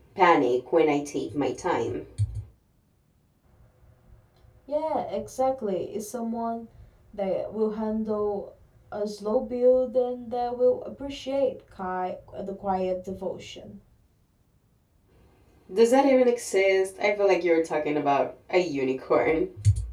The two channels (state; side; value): identical; both; correlation 1.00